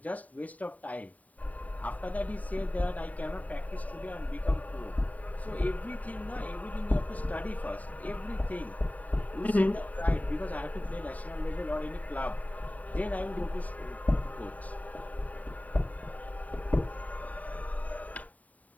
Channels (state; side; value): late; right; 0.072 ms